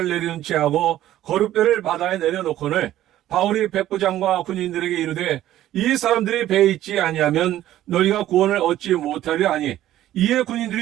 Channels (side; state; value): left; quieter; 13.4 dB